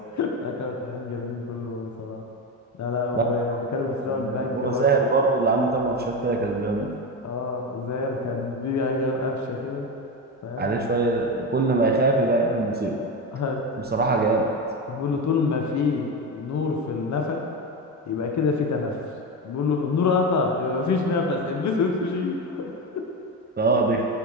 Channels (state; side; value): normal; both; correlation 0.17